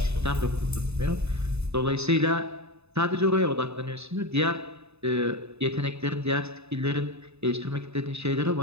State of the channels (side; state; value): left; late; 0.80 ms